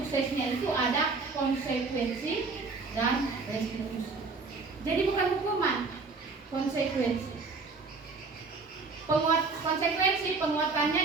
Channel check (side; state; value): left; quieter; 4.2 dB